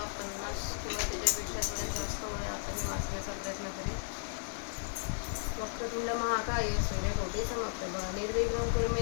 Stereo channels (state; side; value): silent; right; digital silence